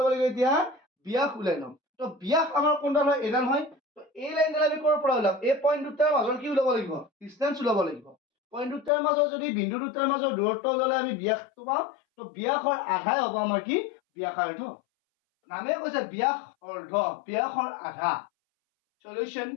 লাগিব এতিয়া ব্যাস উলাই লম তো ব্যাস আমাৰ কোনডাল হয় এডাল হয় তো এই লাইনডাল আমি কৰ পৰা ওলাম এই পয়েন্ট দুটাৰ মাজৰ কি ওলাব লাগিব ডিসটেন্স ওলাব লাগিব পয়েন্ট দুটাৰ মাজৰ যদি বিন্দু দুটাৰ মাজৰ দূৰত্ব ওলালে আমি ব্যাসটো পাম তো ব্যাসৰ আধাই হ'ব আমাৰ কি ব্যাসাৰ্ধ নামে কৈছে ব্যাসৰ আধা সলিউশন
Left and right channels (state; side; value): drops out; right; at 8.9 s